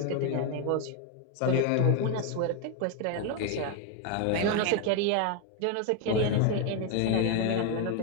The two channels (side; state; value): both; different; correlation 0.01